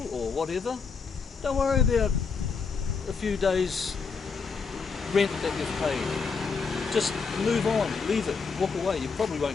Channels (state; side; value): quieter; right; 5.2 dB